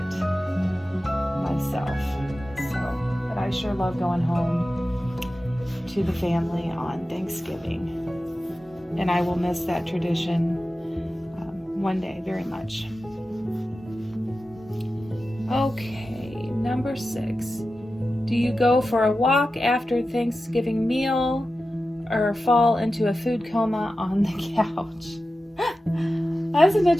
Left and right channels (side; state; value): both; normal; correlation 0.93